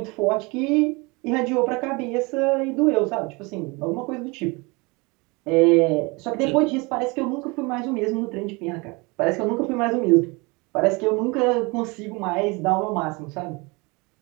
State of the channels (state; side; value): quieter; left; 26.9 dB